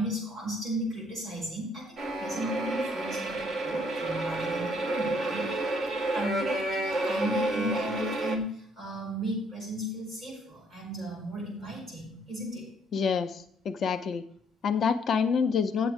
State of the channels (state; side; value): normal; both; correlation 0.66